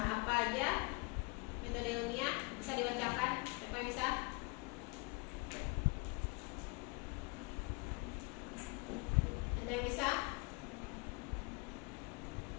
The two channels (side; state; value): right; quieter; 29.1 dB